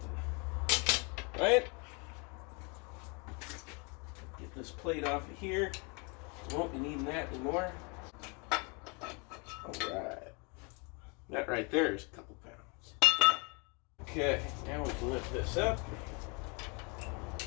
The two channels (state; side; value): quieter; right; 32.5 dB